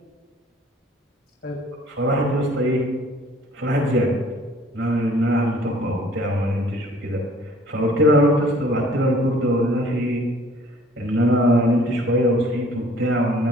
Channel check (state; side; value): normal; both; correlation 0.55